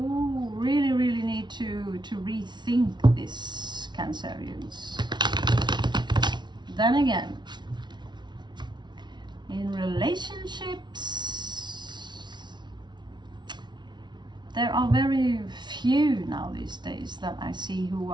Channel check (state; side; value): late; left; 0.21 ms